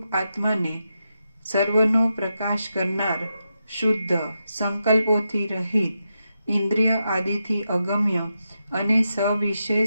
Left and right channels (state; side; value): inverted; both; correlation -0.86